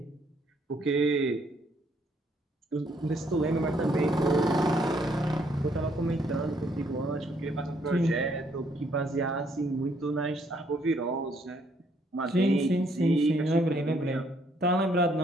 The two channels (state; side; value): normal; both; correlation 0.68